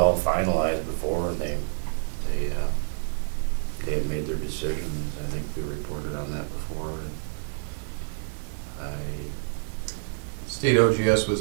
finalized before, and they had made their decisions. I think we reported on that before, and State OGS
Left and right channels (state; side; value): silent; left; digital silence